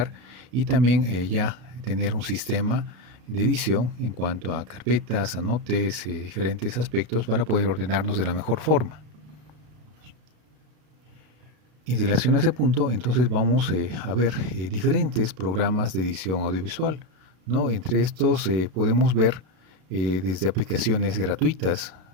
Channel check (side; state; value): left; late; 33 ms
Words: y también ya tener un sistema de edición en cuanto a carpetas, anotes, diferentes aspectos para poder ordenarnos de la mejor forma. En relación a ese punto, entonces vamos a ver diferentes programas de edición audiovisual, ¿no? Entre estos podemos ver desde aplicaciones gratuitas